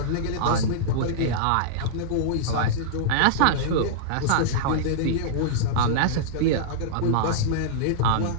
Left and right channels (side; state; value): both; different; correlation -0.02